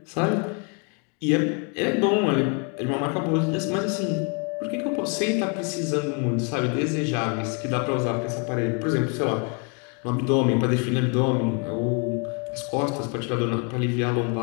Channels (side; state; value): right; quieter; 36.1 dB